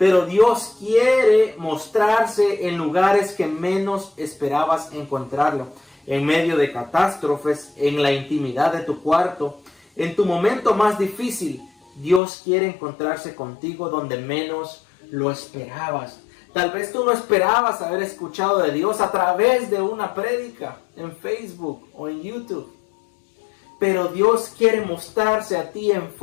Dios quiere mostrarse en lugares que menos esperabas encontrarlo. En medio de catástrofes, en la intimidad de tu cuarto, en tu momento más difícil, Dios quiere encontrarse contigo donde menos lo esperabas. Tal vez tú no esperabas haber escuchado de Dios a través de una prédica en Facebook o en YouTube. Pero Dios quiere mostrarse a ti en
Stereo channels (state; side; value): drops out; right; at 12.2 s